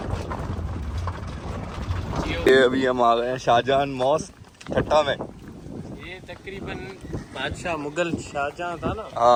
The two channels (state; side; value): identical; both; correlation 1.00